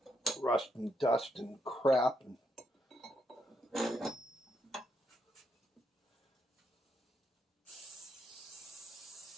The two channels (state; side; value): normal; both; correlation 0.78